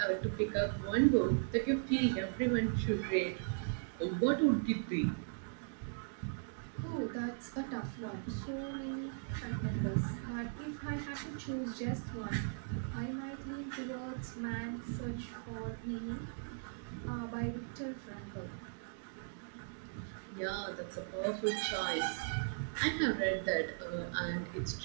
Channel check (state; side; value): silent; left; digital silence